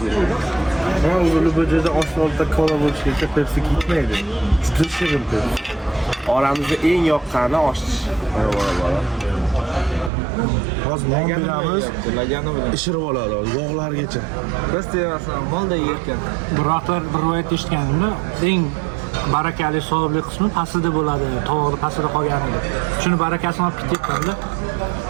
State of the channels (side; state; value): left; drops out; at 10.1 s